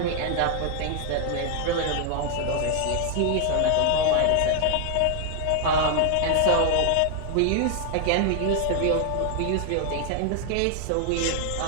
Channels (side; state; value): both; different; correlation 0.00